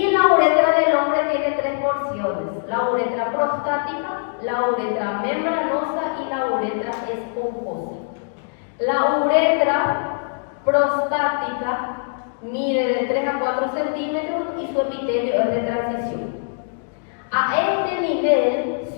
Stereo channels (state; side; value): silent; right; digital silence